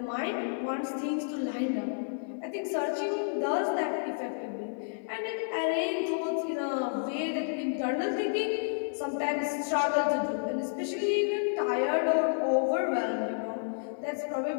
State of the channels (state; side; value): silent; right; digital silence